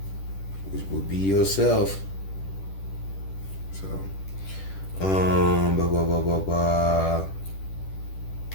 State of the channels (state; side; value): late; right; 10 ms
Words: which will be yourself. So,